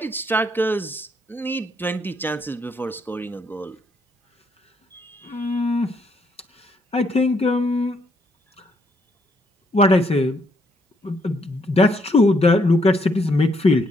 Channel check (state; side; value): normal; both; correlation 0.73